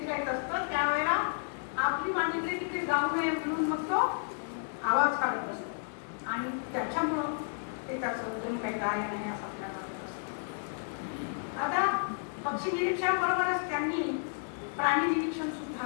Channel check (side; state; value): right; silent; digital silence